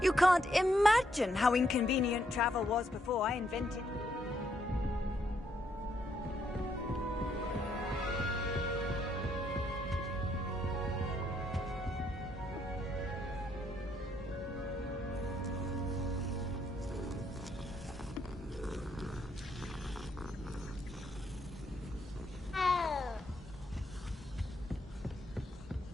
You can't imagine how inconvenient travel was before I invented it.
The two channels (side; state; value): both; normal; correlation 0.74